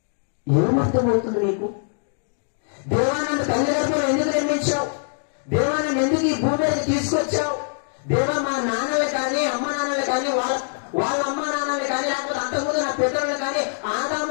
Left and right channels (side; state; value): right; silent; digital silence